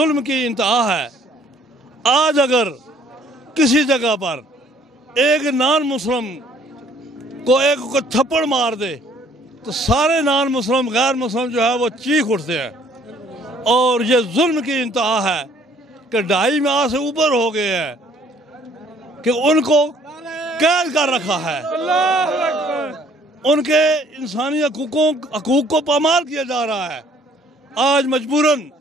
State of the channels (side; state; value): both; normal; correlation 0.60